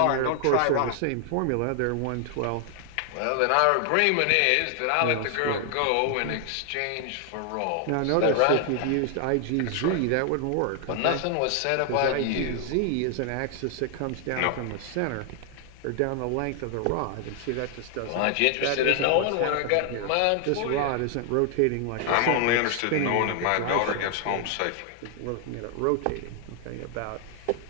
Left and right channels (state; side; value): different; both; correlation 0.00